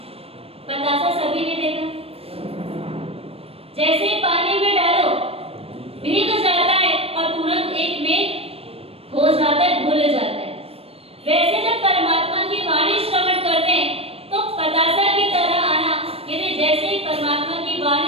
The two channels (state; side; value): late; left; 0.28 ms